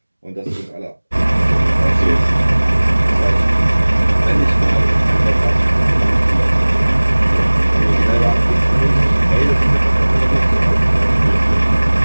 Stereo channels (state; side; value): inverted; both; correlation -1.00